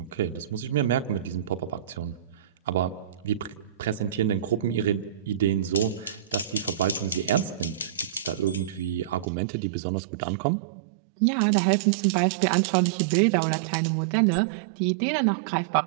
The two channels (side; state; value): left; drops out; at 9.2 s